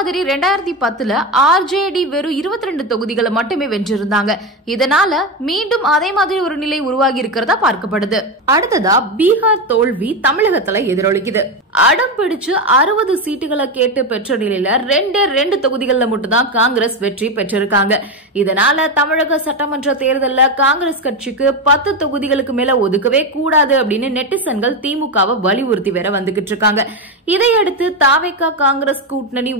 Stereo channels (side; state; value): both; normal; correlation 0.13